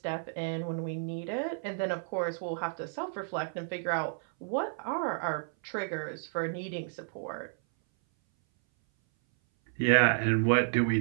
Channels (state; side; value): silent; left; 57 dB below the other